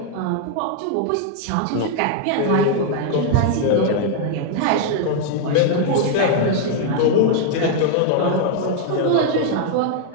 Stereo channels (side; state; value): both; different; correlation 0.00